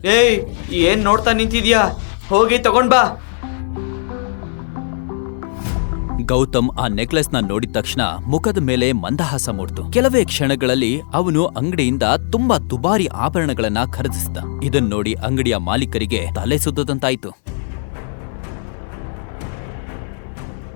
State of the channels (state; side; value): silent; right; 66 dB below the other